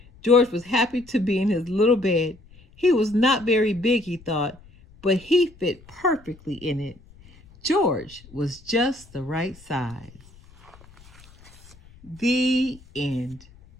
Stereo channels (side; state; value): left; noise; rumble, 25 dB below the sound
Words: George was happy to be in his little bed. He was not very big, he thought, but he fit perfectly in it. George was just the right size. The end.